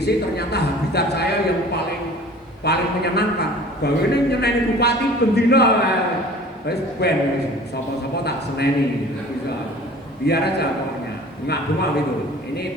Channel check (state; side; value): normal; both; correlation 0.45